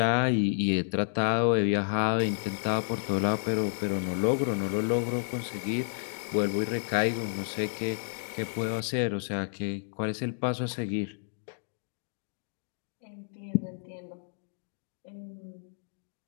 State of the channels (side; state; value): right; silent; digital silence